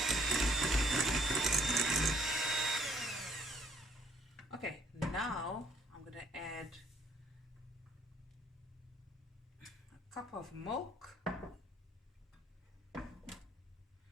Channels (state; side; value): normal; both; correlation 0.63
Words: Okay, now I'm going to add a cup of milk,